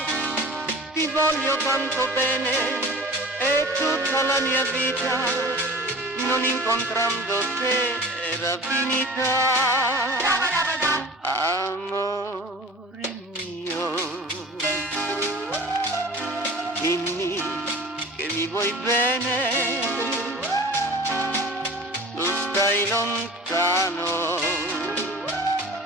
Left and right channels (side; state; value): both; normal; correlation 0.41